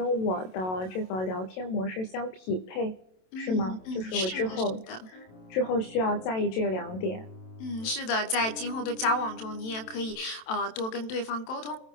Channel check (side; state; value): right; late; 27 ms